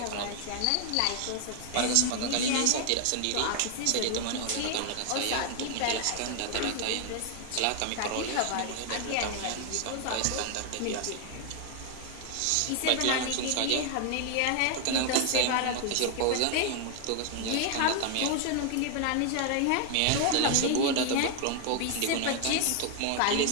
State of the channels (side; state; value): both; different; correlation 0.00